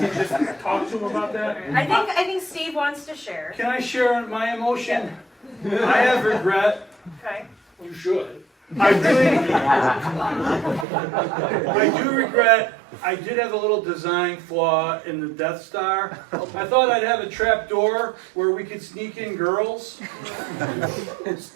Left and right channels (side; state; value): left; drops out; at 10.9 s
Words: just talk to him about that. I think Steve wants to share. Can I share my emotion? I have regret. Okay. You should. I do regret. I did have a little design flaw in the Death Star. I thought I'd have a trap door where we could sneak in girls